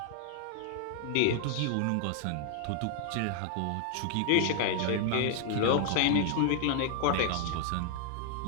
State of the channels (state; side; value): different; both; correlation 0.00